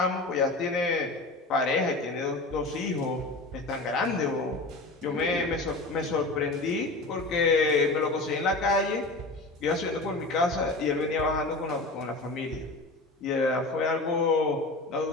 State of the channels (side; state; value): right; quieter; 3.0 dB